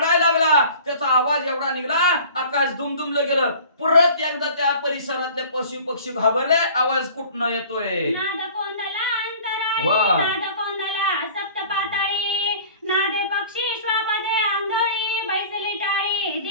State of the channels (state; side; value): inverted; both; correlation -0.46